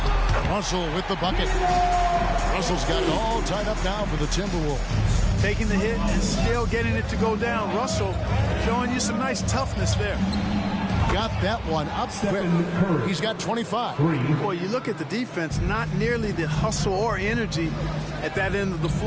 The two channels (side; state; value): both; identical; correlation 1.00